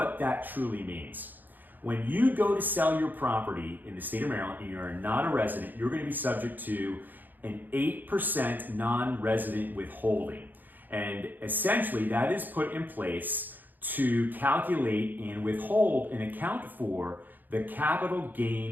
that truly means. When you go to sell your property in the state of Maryland and you're not a resident, you're going to be subject to an 8% non-resident withholding. And essentially that is put in place to calculate and withhold and account for the capital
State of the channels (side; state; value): left; late; 0.087 ms